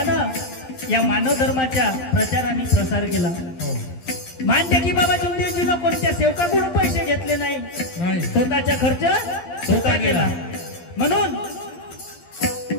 या मानव धर्माच्या प्रचार आणि प्रसार केला. मानते की बाबा जुमदेवजीनं कोणत्या सेवकाकडून पैसे घेतले नाही. स्वतःचा खर्च स्वतः केला. म्हणून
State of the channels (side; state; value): right; late; 12 ms